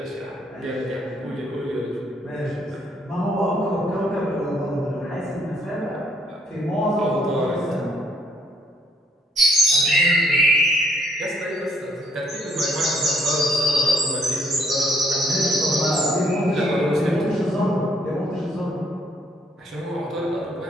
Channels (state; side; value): normal; both; correlation 0.65